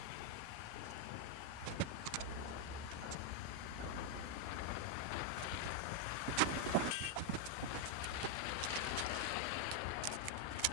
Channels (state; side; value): different; both; correlation 0.00